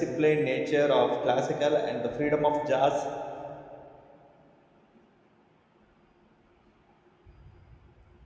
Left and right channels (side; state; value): both; identical; correlation 1.00